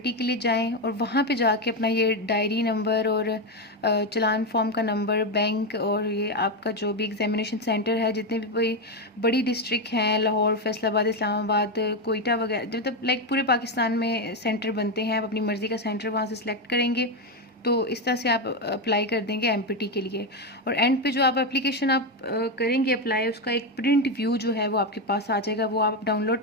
के लिए जाएं और वहाँ पे जाके अपना ये डायरी नंबर और चालान फॉर्म का नंबर, बैंक और ये आपका जो भी एग्जामिनेशन सेंटर है, जितने भी कोई बड़ी डिस्ट्रिक्ट हैं, लाहौर, फैसलाबाद, इस्लामाबाद, कोयटा वगैरह, मतलब लाइक पूरे पाकिस्तान में सेंटर बनते हैं, आप अपनी मर्ज़ी का सेंटर वहाँ से सिलेक्ट करेंगे। तो इस तरह से आप अप्लाई कर देंगे एमपीटी के लिए। और एंड पे जो आप एप्लीकेशन आप करेंगे अप्लाई, उसका एक प्रिंट व्यू जो है वो आपके पास आ जाएगा, वो आप डाउनलोड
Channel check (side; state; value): both; normal; correlation 0.09